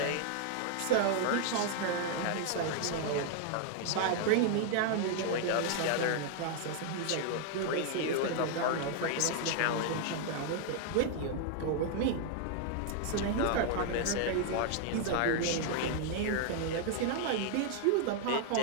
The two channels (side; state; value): both; different; correlation 0.00